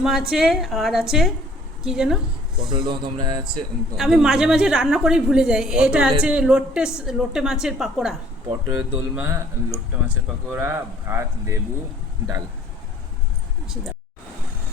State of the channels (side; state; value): both; normal; correlation 0.56